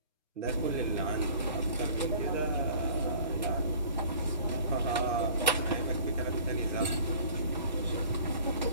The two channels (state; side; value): inverted; both; correlation -0.48